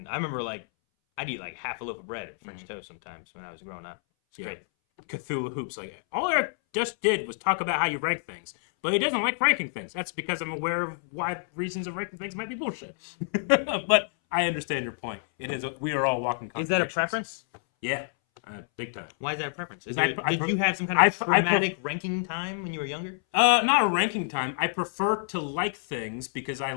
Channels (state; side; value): silent; right; 59 dB below the other